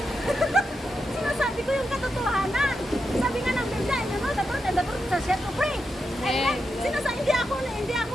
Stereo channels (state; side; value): normal; both; correlation 0.86